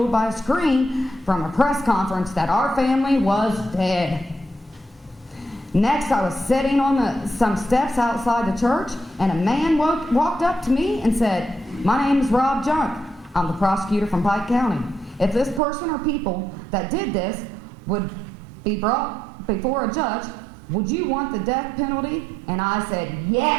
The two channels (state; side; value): drops out; left; at 15.6 s